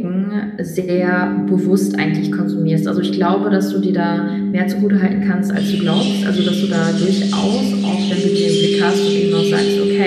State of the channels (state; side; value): identical; both; correlation 1.00